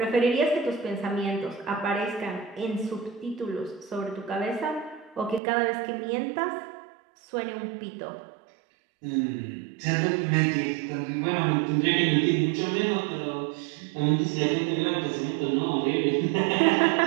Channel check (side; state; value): left; drops out; at 5.4 s